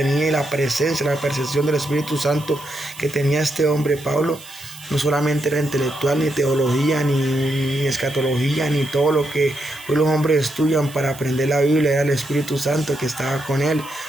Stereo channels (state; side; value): noise; right; hiss, 18 dB below the sound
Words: y la presencia, la percepción del Espíritu Santo que tenía este hombre Pablo, no solamente era intelectual, ni teología, ni escatología, ni todo lo que hoy los hombres estudian para aprender la Biblia, era el Espíritu Santo que estaba con él.